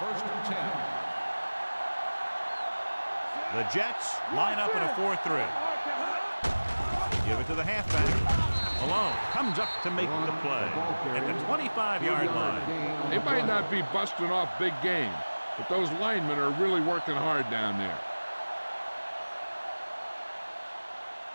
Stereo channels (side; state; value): both; inverted; correlation -1.00